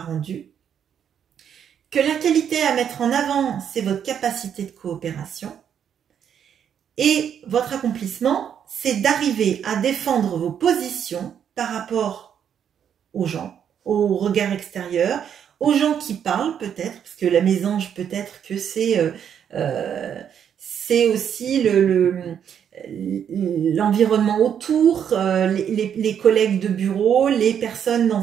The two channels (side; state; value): left; quieter; 8.6 dB